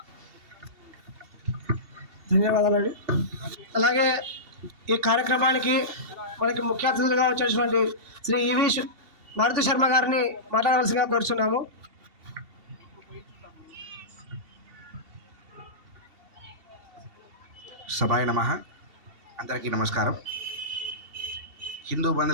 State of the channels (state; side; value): late; left; 2.7 ms